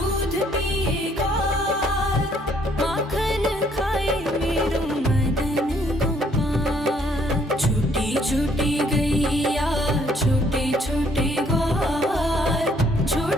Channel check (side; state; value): both; normal; correlation 0.66